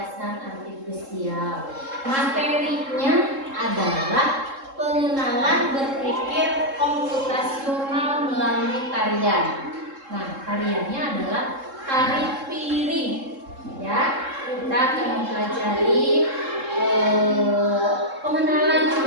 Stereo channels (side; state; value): left; late; 3.7 ms